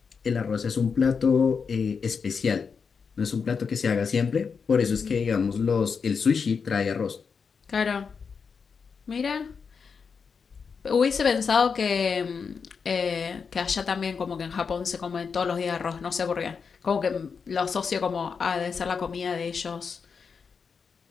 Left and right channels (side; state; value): right; quieter; 5.7 dB